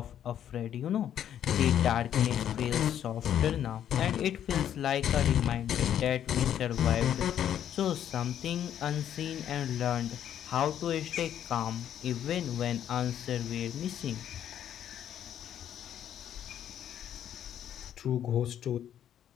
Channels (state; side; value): quieter; right; 10.2 dB